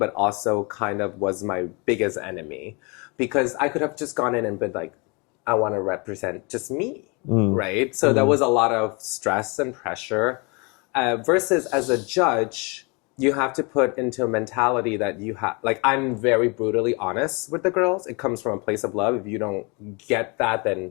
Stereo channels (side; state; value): right; quieter; 30.3 dB